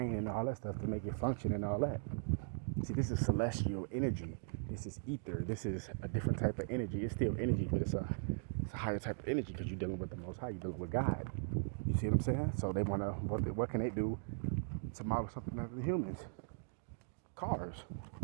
and all that stuff to make it function and all that. See, this is celestial energy. This is ether. This is a different type of energy. It's still energy, but it's a higher type of energy because you're dealing with the Most High. You're dealing with God. You see what I'm saying? So they want to, what can they do to model something after the humans? Cars.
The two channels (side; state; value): left; silent; digital silence